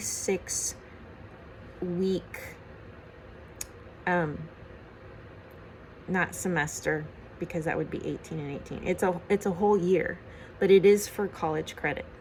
not semester, because that would be 18 and 18. It's a whole year, but it is for college credit.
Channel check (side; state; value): both; identical; correlation 1.00